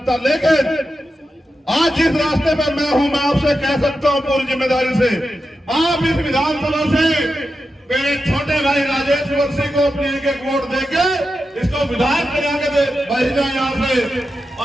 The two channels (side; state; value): both; normal; correlation 0.90